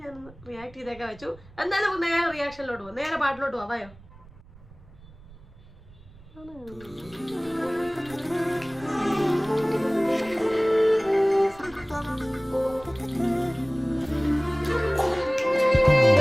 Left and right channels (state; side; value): noise; right; rumble, 22 dB below the sound